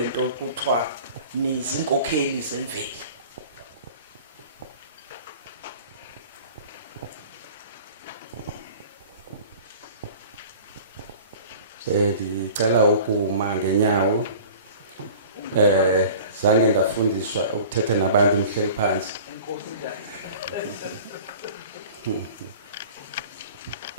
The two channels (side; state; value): both; inverted; correlation -0.43